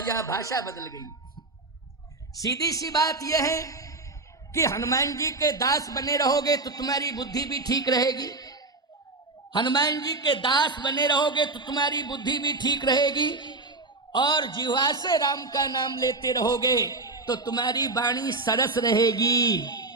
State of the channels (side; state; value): left; quieter; 3.3 dB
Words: भाषा बदल गई। सीधी सी बात यह है कि हनुमान जी के दास बने रहोगे तो तुम्हारी बुद्धि भी ठीक रहेगी। हनुमान जी के दास बने रहोगे तो तुम्हारी बुद्धि भी ठीक रहेगी, और जिह्वा से राम का नाम लेते रहोगे तो तुम्हारी वाणी सरस रहेगी।